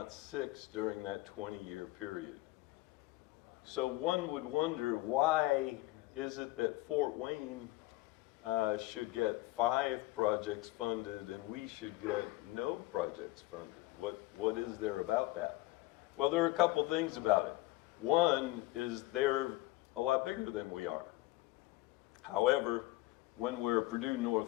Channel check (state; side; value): quieter; right; 19.0 dB